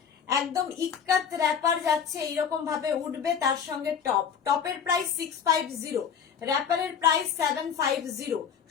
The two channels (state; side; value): quieter; right; 7.4 dB